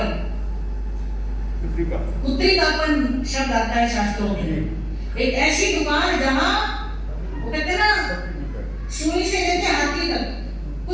कापन शब्द आता है शास्त्रों में। एक ऐसी दुकान जहां वो कहते हैं ना सुई से लेके हाथी तक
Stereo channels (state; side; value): identical; both; correlation 1.00